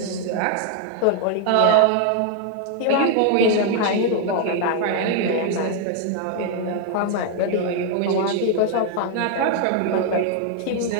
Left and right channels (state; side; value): different; both; correlation 0.00